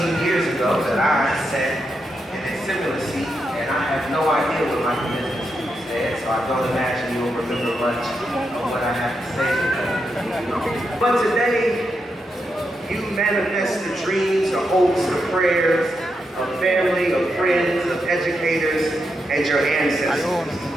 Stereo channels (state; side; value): normal; both; correlation 0.84